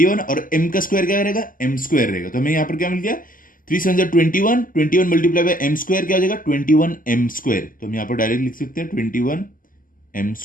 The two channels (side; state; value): right; late; 0.40 ms